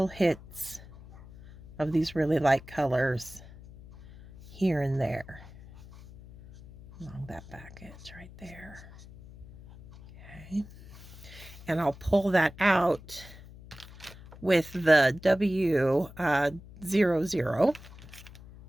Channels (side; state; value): left; noise; hum, 19 dB below the sound